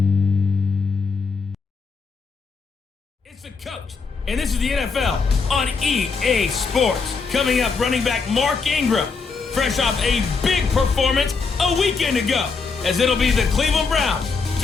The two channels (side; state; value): right; quieter; 4.9 dB